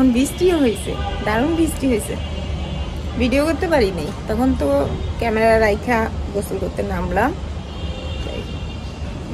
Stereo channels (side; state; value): both; identical; correlation 1.00